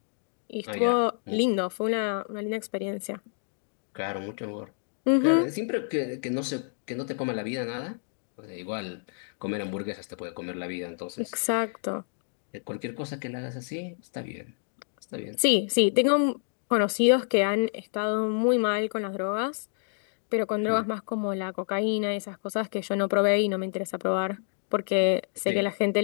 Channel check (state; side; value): silent; right; 59 dB below the other